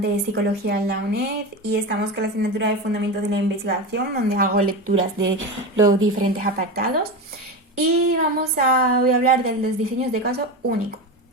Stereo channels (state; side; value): normal; both; correlation 0.21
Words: de Psicología en la UNED y estamos con la asignatura de Fundamentos de la Investigación, donde hago lecturas de los diferentes apartados. Y voy a hablar de los diseños de caso único.